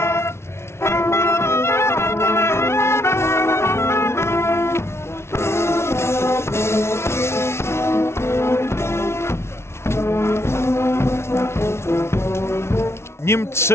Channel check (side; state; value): right; late; 0.13 ms